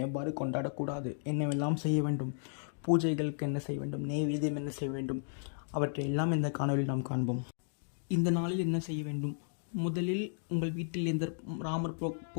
எவ்வாறு கொண்டாடக்கூடாது, என்னவெல்லாம் செய்ய வேண்டும், பூஜைகளுக்கு என்ன செய்ய வேண்டும், நெய்வேத்தியம் என்ன செய்ய வேண்டும், அவற்றை எல்லாம் இந்த காணொலியில் நாம் காண்போம். இந்த நாளில் என்ன செய்ய வேண்டும்? முதலில் உங்கள் வீட்டில் எந்த ராமர்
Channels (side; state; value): right; silent; digital silence